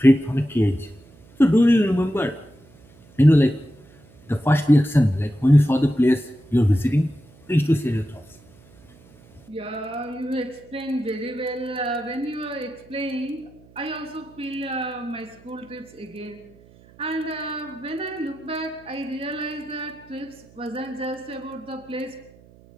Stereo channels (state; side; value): noise; right; hum, 26 dB below the sound